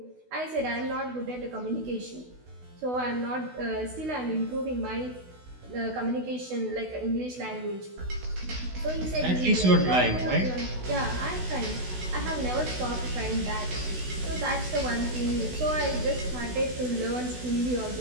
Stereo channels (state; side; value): late; left; 16 ms